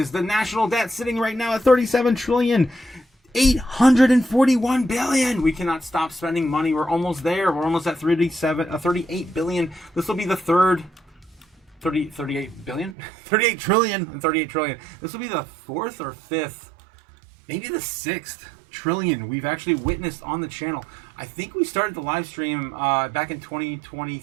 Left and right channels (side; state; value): left; drops out; at 13.0 s